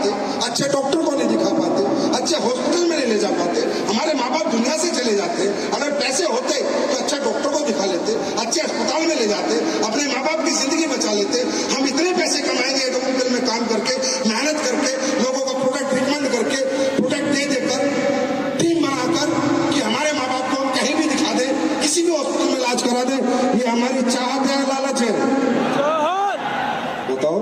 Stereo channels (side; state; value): both; identical; correlation 1.00